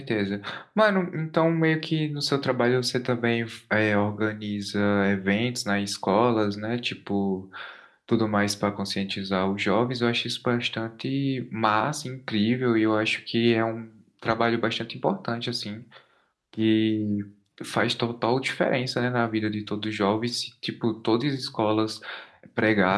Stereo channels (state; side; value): identical; both; correlation 1.00